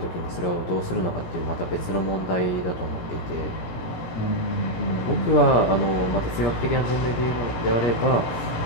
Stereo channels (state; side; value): late; right; 17 ms